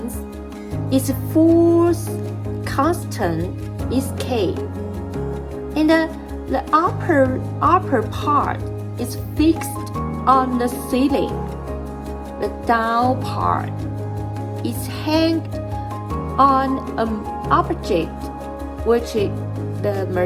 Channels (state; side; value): identical; both; correlation 1.00